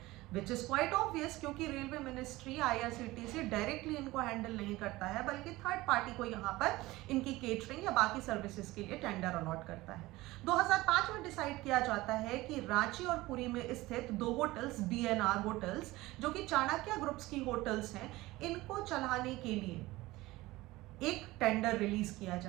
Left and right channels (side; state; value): left; quieter; 19.1 dB